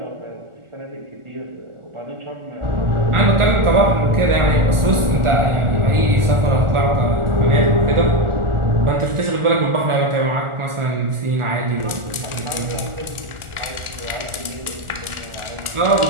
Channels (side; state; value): left; late; 1.4 ms